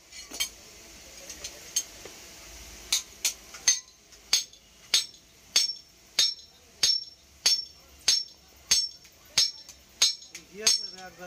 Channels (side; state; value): both; identical; correlation 1.00